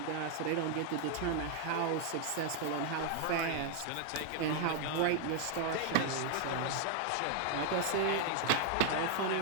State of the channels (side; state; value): both; different; correlation 0.00